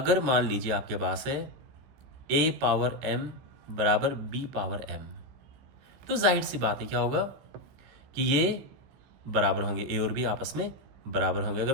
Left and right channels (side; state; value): left; late; 15 ms